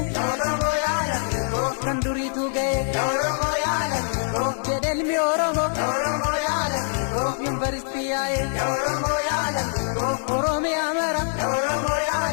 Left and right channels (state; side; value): silent; right; digital silence